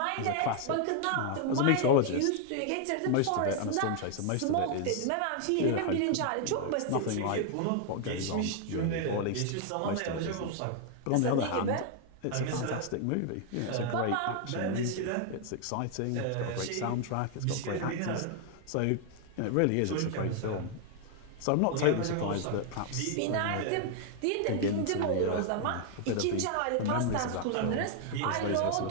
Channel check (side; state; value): both; different; correlation 0.00